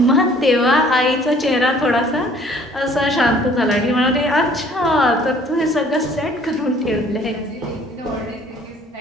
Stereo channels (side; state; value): both; normal; correlation 0.56